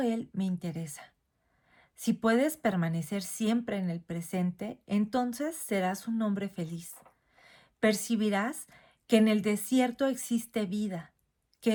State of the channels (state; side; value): identical; both; correlation 1.00